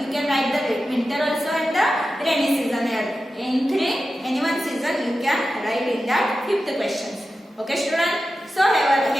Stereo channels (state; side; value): normal; both; correlation 0.93